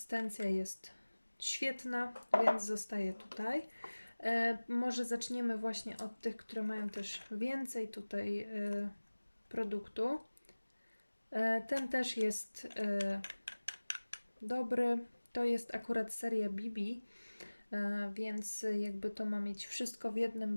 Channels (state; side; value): inverted; both; correlation -1.00